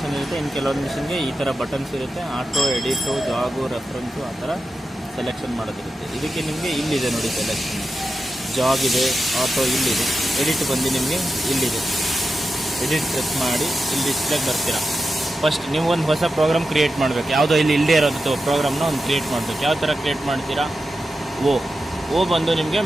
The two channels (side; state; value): both; normal; correlation 0.91